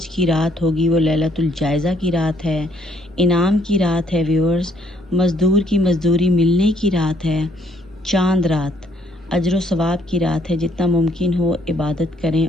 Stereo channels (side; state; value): both; normal; correlation 0.67